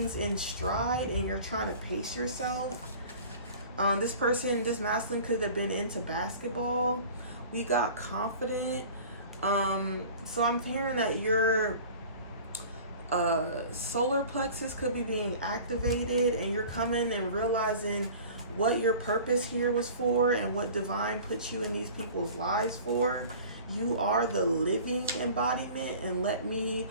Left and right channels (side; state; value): both; inverted; correlation -0.43